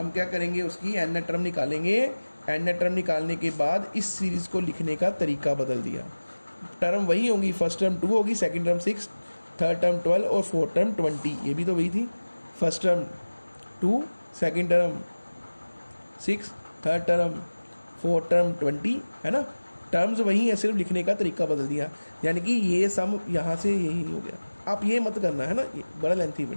क्या करेंगे, उसकी n टर्म निकालेंगे, n टर्म निकालने के बाद इस सीरीज़ को लिखने का तरीका बदल दिया। टर्म वही होंगी, फर्स्ट टर्म 2 होगी, सेकंड टर्म 6, थर्ड टर्म 12 और फोर्थ टर्म 20, ये भी तो वही थी, first term 2 second term 6 third term fourth term 20, है ना, टर्म्स वही है, सिर्फ लिखने का तरीका बदल दिया। यानी कि ये सम यहाँ से यही हो गया। आप ये मत करना, है ना, ये बड़ा लेंथी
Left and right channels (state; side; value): inverted; both; correlation -1.00